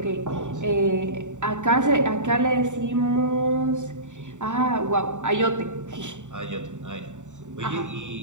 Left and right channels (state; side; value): late; left; 0.85 ms